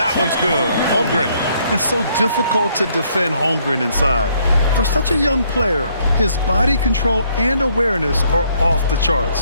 one's good. Holmgren. It's so difficult to defend Holmgren inside. For such a young player, his body control and awareness are off the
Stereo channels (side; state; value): both; inverted; correlation -0.68